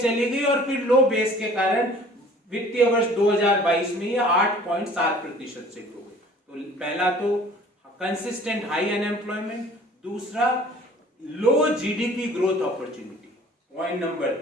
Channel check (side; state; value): both; normal; correlation 0.50